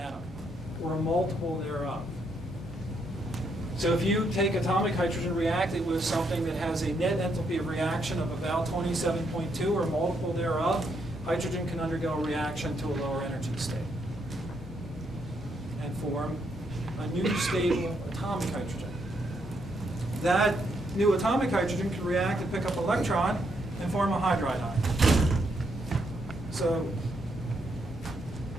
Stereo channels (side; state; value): both; normal; correlation 0.76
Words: or a multiple thereof. So if you take atomic hydrogen, react it with something that has a net enthalpy of reaction of about 27.2 or a multiple thereof, hydrogen can undergo a reaction to a lower energy state and form a new stable atomic hydrogen. That new atomic hydrogen can react and pick up an electron and form a hydride ion. So,